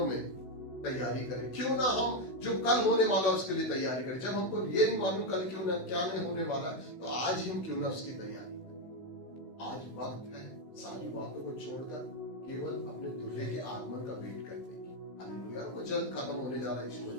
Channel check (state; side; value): late; right; 16 ms